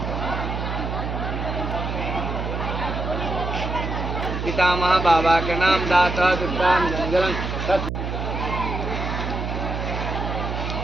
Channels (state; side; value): noise; right; hum, 3 dB below the sound